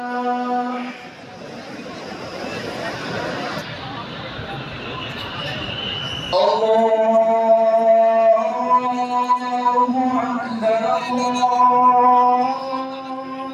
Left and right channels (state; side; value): identical; both; correlation 1.00